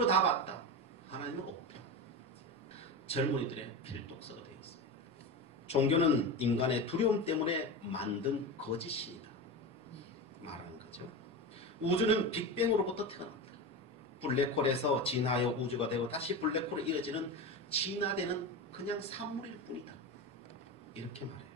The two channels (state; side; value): normal; both; correlation 0.22